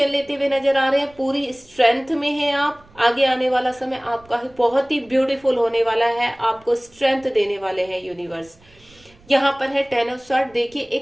लेते हुए नजर आ रहे हैं, पूरी स्ट्रेंथ में हैं आप। आगे आने वाला समय आपका बहुत ही ब्यूटीफुल होने वाला है, आपको स्ट्रेंथ देने वाले हैं यूनिवर्स। यहाँ पर है टेन ऑफ स्वार्ड। देखिए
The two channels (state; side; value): noise; right; rumble, 28 dB below the sound